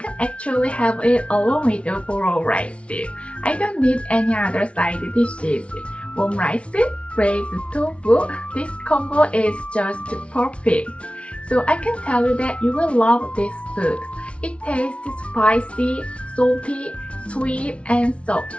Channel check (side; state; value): right; late; 0.061 ms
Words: actually have it along with the bowl rice. I don't need any other side dishes. Warm rice, braised tofu, this combo is just perfect. So I can tell you that you will love this food. It tastes spicy, salty, sweet, and soft